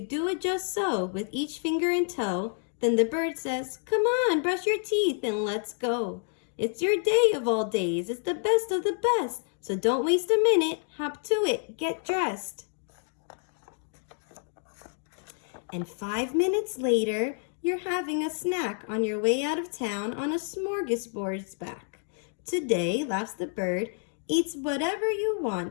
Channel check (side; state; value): right; silent; 59 dB below the other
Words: just so with each finger and toe. Then the bird says, "Come on, brush your teeth and let's go. It's your day of all days. It's the best of the best. So don't waste a minute. Hop to it. Get dressed." And 5 minutes later, you're having a snack on your way out of town on a smorgasbord's back. Today, laughs the bird, eats whatever you